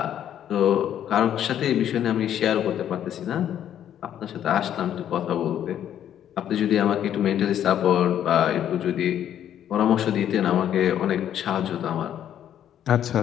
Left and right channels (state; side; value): quieter; right; 10.4 dB